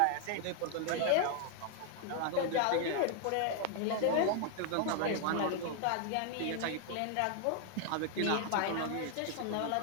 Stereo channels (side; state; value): both; different; correlation 0.00